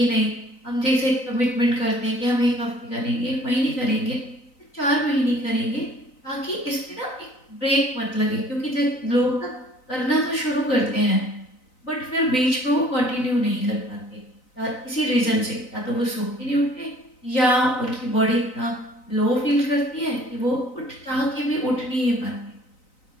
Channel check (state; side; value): late; right; 3.9 ms